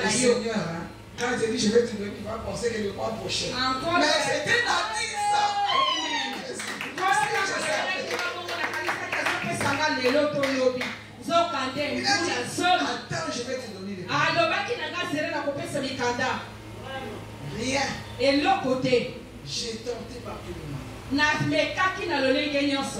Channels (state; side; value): identical; both; correlation 1.00